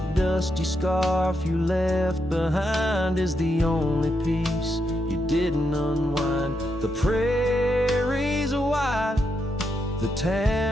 dusty scarf you left behind is the only piece you didn't unwind. The prairie's wide, the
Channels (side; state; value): both; normal; correlation 0.82